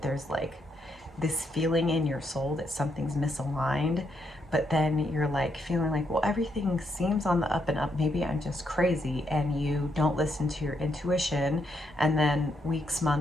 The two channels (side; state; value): both; normal; correlation 0.78